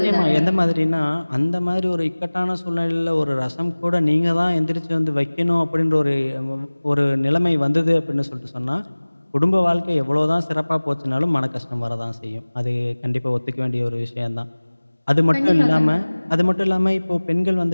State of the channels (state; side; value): inverted; both; correlation -1.00